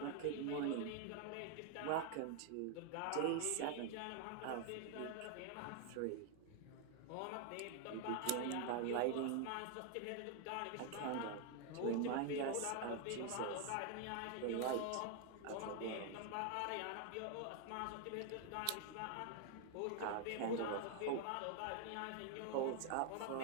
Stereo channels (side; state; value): both; different; correlation 0.00